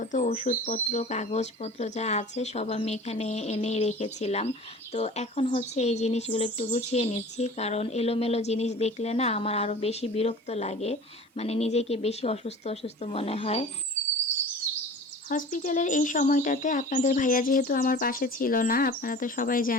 ওষুধপত্র কাগজপত্র যা আছে সব আমি এখানে এনেই রেখেছিলাম। তো এখন হচ্ছে এই জিনিসগুলো একটু গুছিয়ে নিচ্ছি, কারণ এলোমেলো জিনিস দেখলে না আমার আরও বেশি বিরক্ত লাগে, মানে নিজেকে বেশি অসুস্থ অসুস্থ মনে হয়। হসপিটালের এই সময়টাতে আপনাদের ভাইয়া যেহেতু আমার পাশে ছিল না, আপনারা তো সবাই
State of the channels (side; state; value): both; normal; correlation 0.40